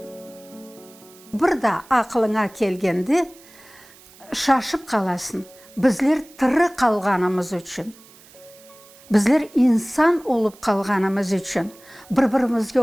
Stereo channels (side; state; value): right; noise; hiss, 24 dB below the sound